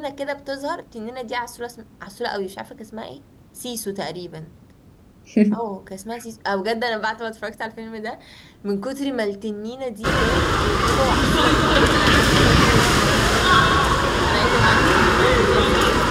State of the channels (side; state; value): both; identical; correlation 1.00